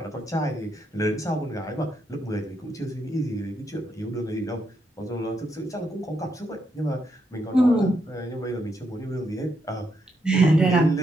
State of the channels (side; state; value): both; normal; correlation 0.79